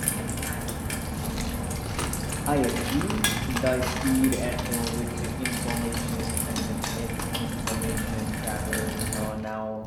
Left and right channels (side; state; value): both; identical; correlation 1.00